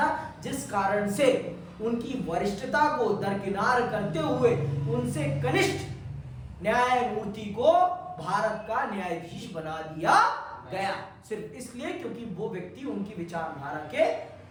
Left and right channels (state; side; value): identical; both; correlation 1.00